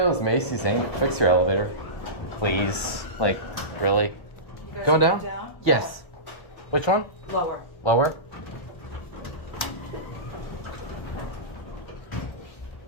Macy's ain't fix your elevator. Please. Like, really? Going down? Yes. Which one? Lower. Lower?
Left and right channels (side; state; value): right; late; 1.4 ms